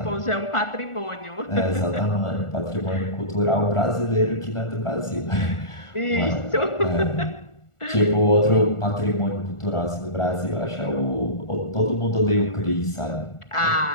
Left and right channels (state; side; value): late; right; 1.4 ms